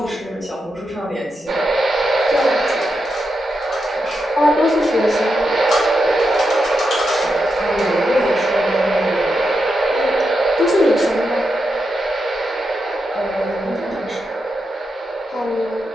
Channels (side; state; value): both; normal; correlation 0.86